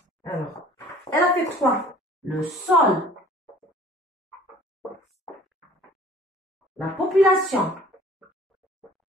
alors elle affecte quoi? Le sol, la population,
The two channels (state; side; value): normal; both; correlation 0.51